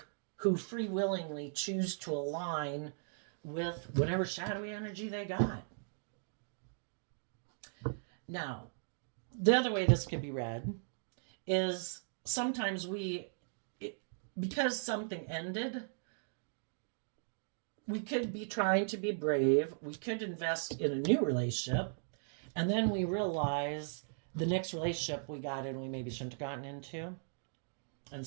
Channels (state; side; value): silent; left; digital silence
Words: who free willingly choose to align with whatever shadowy energy they got. Now, the other way this can be read is sometimes because something ended, we could be trying to be brave. We could invest in a new relationship. And then we realize the next relationship we got in, we maybe shouldn't have gotten into. And